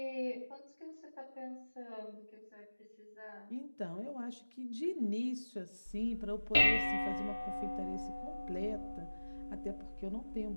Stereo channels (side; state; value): both; inverted; correlation -1.00